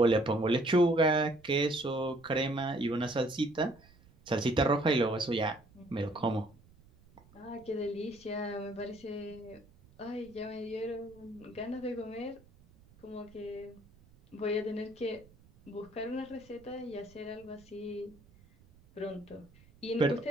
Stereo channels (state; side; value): noise; right; rumble, 26 dB below the sound